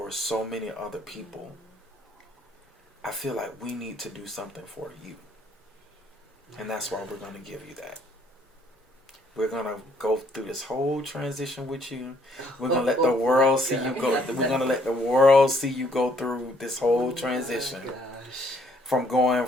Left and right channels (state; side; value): normal; both; correlation 0.65